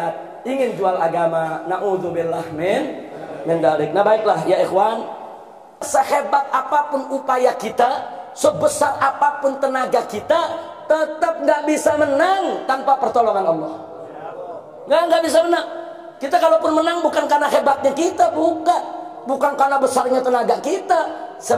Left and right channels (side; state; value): both; identical; correlation 1.00